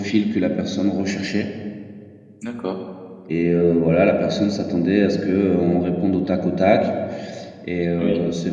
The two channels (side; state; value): both; identical; correlation 1.00